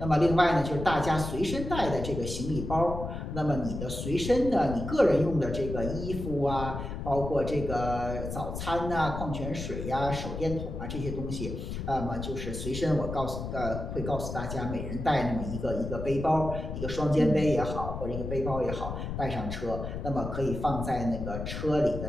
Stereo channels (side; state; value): left; noise; rumble, 6 dB below the sound